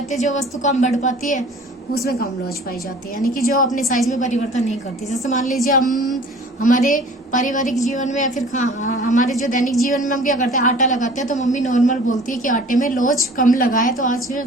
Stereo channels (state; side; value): normal; both; correlation 0.47